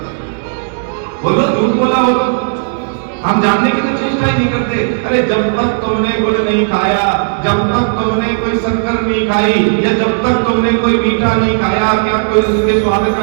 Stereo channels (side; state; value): left; silent; digital silence